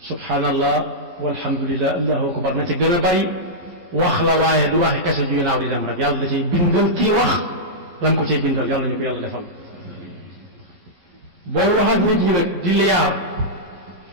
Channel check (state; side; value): late; left; 11 ms